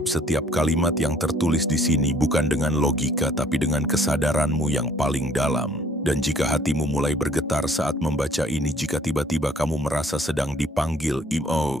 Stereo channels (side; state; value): both; normal; correlation 0.58